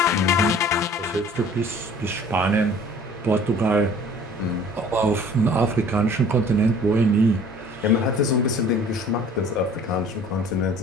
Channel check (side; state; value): both; normal; correlation 0.50